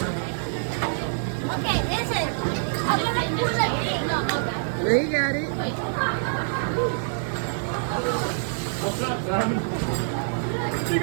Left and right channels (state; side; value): silent; left; digital silence